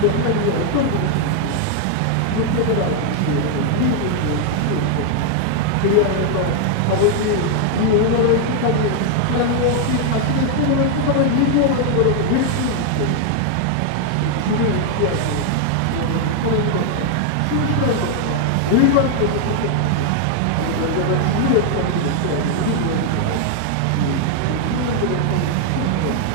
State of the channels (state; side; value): different; both; correlation 0.00